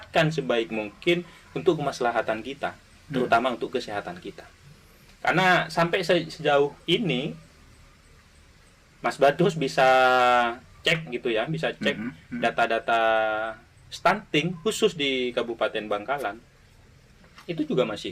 sebaik mungkin untuk kemaslahatan kita, terutama untuk kesehatan kita. Karena sampai sejauh ini Mas Badrus bisa cek gitu ya, bisa cek data-data stunting khusus di Kabupaten Bangkalan, itu juga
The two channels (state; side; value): identical; both; correlation 1.00